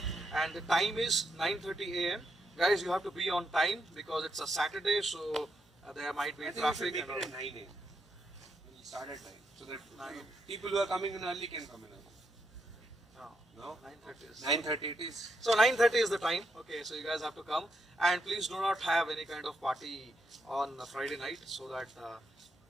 and the time is 9:30 a.m. Guys, you have to be on time because it's a Saturday, so there might be I think we traffic should and make all. it at 9 a.m. We start at 9. So that people who are coming in early can come in early. No? 9:30 is. 9:30 it is. So 9:30 is the time. Okay, so you guys have to come, and please do not have any kind of party on Friday night, so that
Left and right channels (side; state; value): both; normal; correlation 0.80